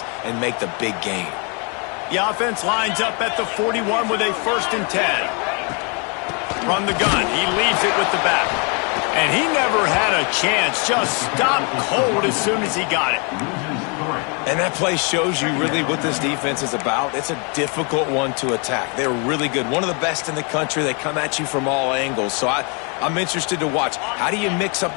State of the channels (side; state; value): right; quieter; 35.0 dB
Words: and make the big gain. The offense lines up at the 41 with a 1st and 10. From the gun, he leaves it with the back. And he never had a chance. Just stopped cold as soon as he got it. And that play shows you really what this defense is about. It's a difficult one to attack. They're really good. One of the best in the country. They come at you from all angles. So I'm interested to watch. How do you mix up